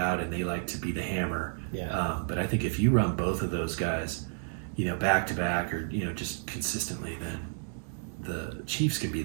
and they like to be the hammer, Yeah. but I think if you run both of those guys, back to back or just consistently, then the Chiefs can be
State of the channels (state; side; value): silent; left; digital silence